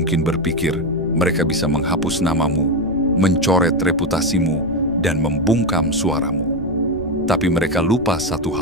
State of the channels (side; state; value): left; noise; rumble, 15 dB below the sound